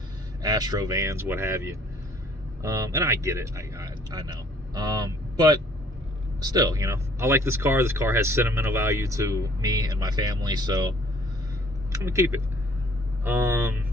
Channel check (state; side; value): normal; both; correlation 0.58